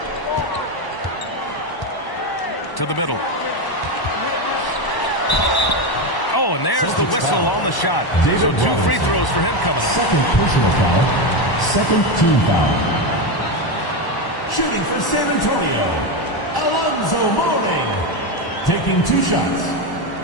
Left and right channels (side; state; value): right; late; 1.0 ms